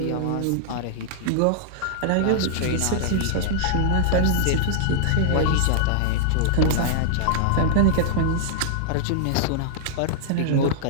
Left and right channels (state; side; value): different; both; correlation -0.01